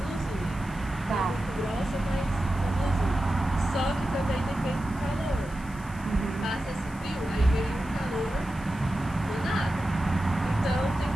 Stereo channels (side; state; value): left; noise; hiss, 22 dB below the sound